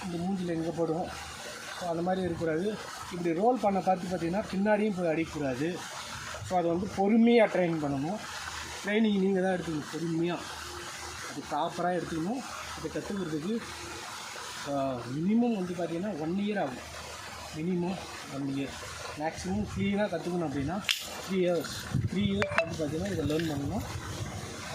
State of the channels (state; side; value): identical; both; correlation 1.00